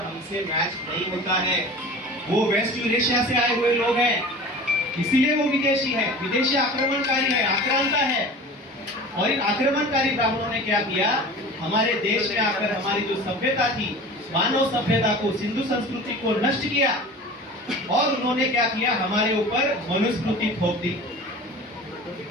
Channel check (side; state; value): both; normal; correlation 0.38